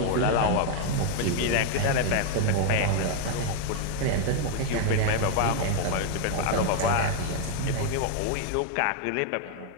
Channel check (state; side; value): different; both; correlation 0.00